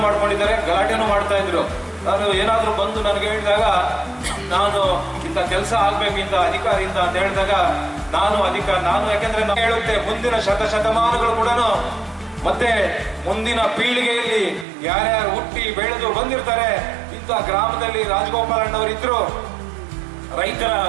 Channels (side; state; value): left; drops out; at 14.7 s